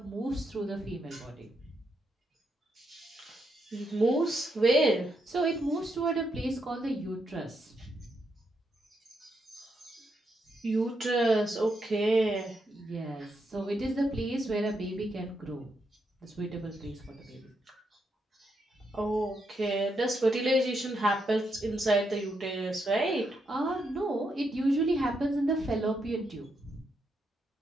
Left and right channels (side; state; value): both; normal; correlation 0.81